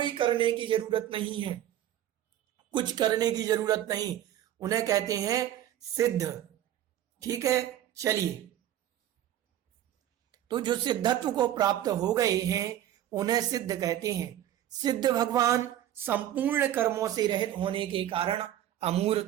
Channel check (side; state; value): left; quieter; 12.0 dB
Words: करने की जरूरत नहीं है, कुछ करने की जरूरत नहीं, उन्हें कहते हैं सिद्ध। ठीक है, चलिए, तो जो सिद्धत्व को प्राप्त हो गए हैं उन्हें सिद्ध कहते हैं। सिद्ध भगवान संपूर्ण कर्मों से रहित होने के कारण